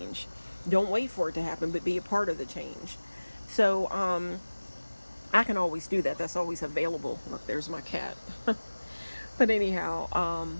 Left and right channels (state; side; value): inverted; both; correlation -1.00